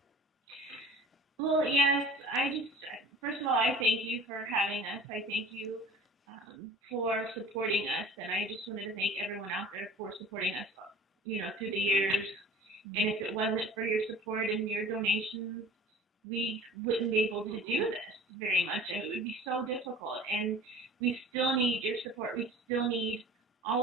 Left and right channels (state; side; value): normal; both; correlation 0.43